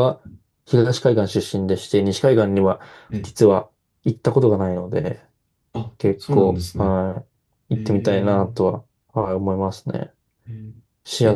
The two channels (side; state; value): both; identical; correlation 1.00